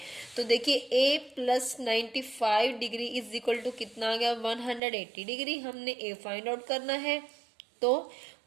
तो देखिए a plus 95 degree is equal to कितना आ गया, 180 डिग्री। हमने a फाइंड आउट करना है, तो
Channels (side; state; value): left; drops out; at 4.8 s